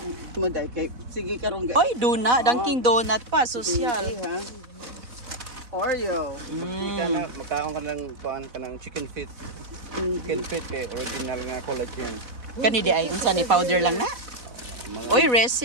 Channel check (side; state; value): left; late; 4.1 ms